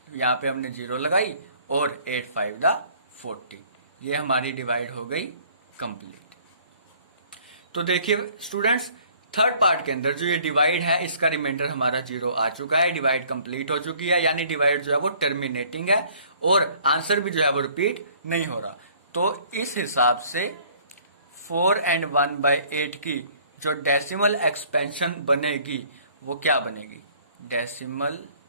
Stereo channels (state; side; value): inverted; both; correlation -0.56